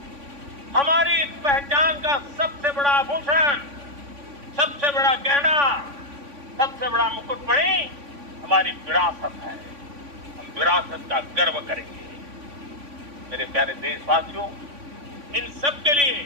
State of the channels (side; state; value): left; late; 3.5 ms